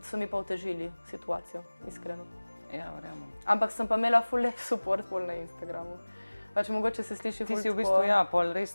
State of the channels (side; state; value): both; inverted; correlation -1.00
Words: so mi pa otežili situacijo, iskreno. Ja, verjamem. Ampak sem pa imela ful lep support pol na Instagramu. Pač mogoče se sliši ful tako. Ti si v bistvu, ja, pol res